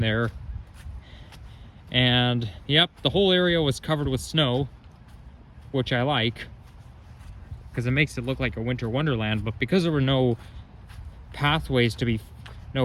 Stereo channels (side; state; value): both; identical; correlation 1.00